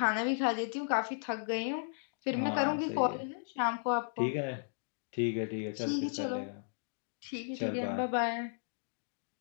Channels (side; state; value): right; silent; digital silence